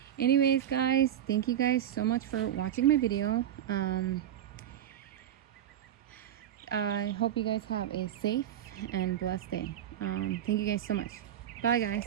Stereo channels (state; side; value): quieter; left; 10.7 dB